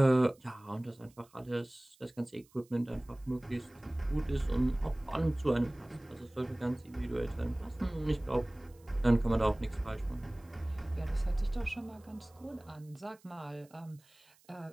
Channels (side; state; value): right; noise; hiss, 30 dB below the sound